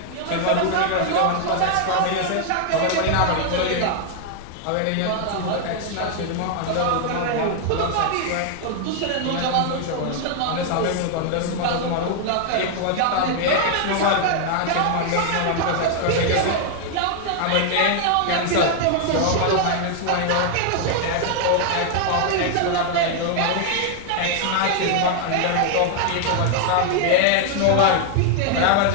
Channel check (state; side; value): different; both; correlation 0.00